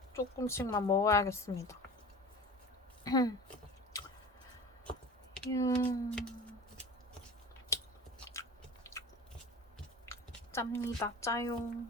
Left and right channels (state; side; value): normal; both; correlation 0.37